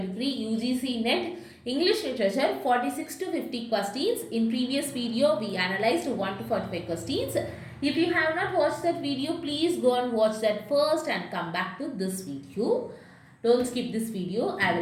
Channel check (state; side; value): identical; both; correlation 1.00